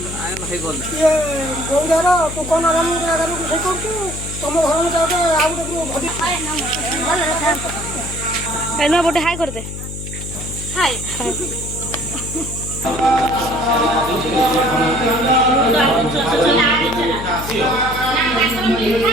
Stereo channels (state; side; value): noise; left; hum, 9 dB below the sound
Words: आए भाई बोल ये गौदारा तो कोन आराम करू से करतु तुम घर में जाओ तो आउ तो भदी एनो बोटे हाय कर दे हाय